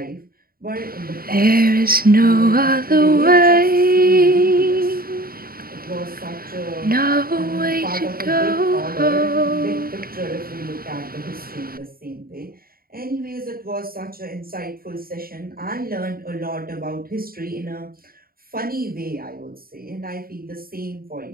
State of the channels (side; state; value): left; late; 0.43 ms